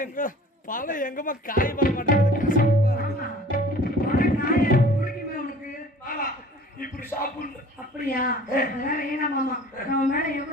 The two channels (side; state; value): both; normal; correlation 0.48